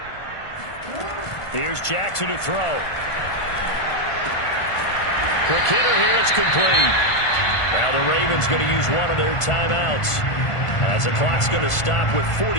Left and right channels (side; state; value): right; late; 1.5 ms